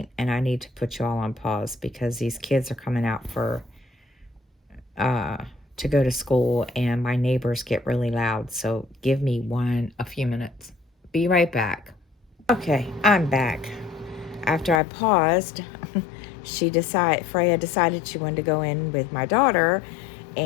and I need to put you all on pause because these kids are coming out for uh to go to school, and my neighbors get really loud. So give me a few minutes. Be right back. Okay, I'm back. After I paused, Freya decided she wanted to go in with my daughter,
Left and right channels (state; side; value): drops out; right; at 14.8 s